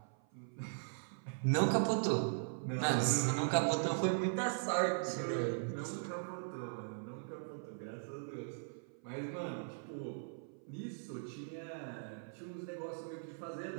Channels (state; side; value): silent; left; 51 dB below the other